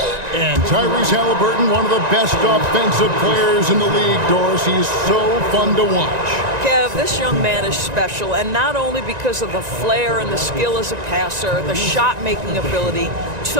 And Tyrese Halliburton, one of the best offensive players in the league, Doris. He's so fun to watch. Kev, this young man is special, and not only because of the flair and the skill as a passer, the shot-making ability.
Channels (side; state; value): left; late; 1.9 ms